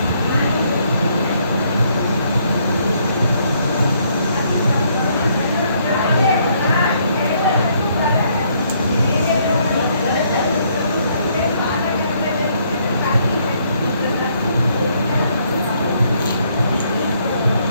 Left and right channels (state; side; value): inverted; both; correlation -0.69